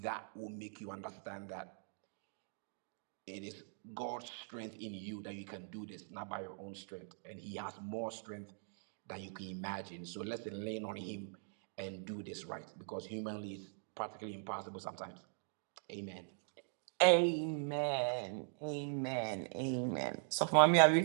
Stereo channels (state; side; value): silent; left; digital silence